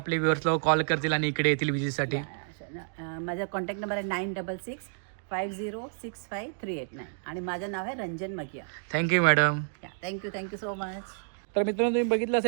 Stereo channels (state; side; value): silent; left; digital silence